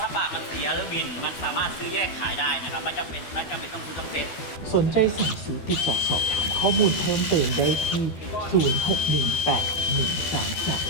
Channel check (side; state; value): right; late; 12 ms